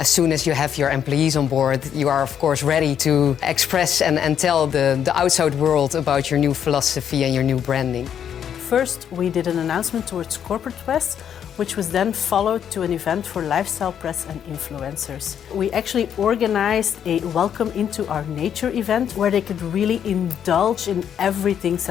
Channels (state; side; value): quieter; right; 8.9 dB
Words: soon as you have your employees on board, you are of course ready to express and tell the outside world about your new philosophy and your new branding. First, we did an announcement towards Corporate West which was then followed to an event for lifestyle press and influencers. We actually organized a Welcome into Our Nature event where they could really indulge in everything